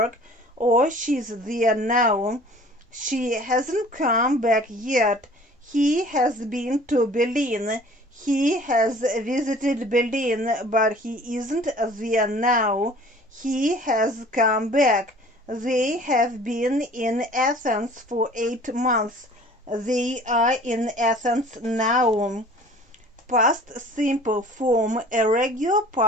or she's there now. She hasn't come back yet. He has been to Berlin. He has visited Berlin, but he isn't there now. He has come back. They have been in Athens for 8 months. They are in Athens now. Past simple form. A regular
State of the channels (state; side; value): normal; both; correlation 0.48